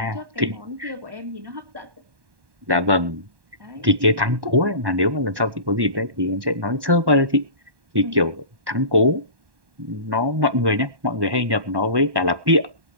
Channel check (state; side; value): late; left; 1.1 ms